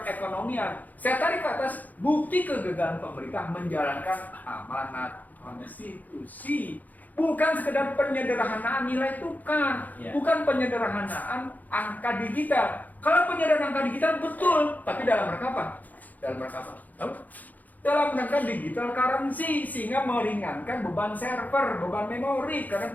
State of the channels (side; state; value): right; late; 0.081 ms